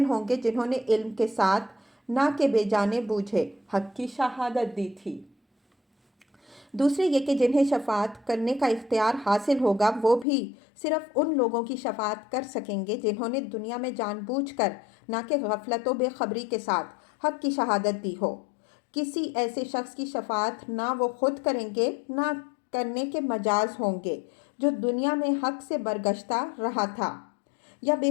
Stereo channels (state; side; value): drops out; right; at 10.2 s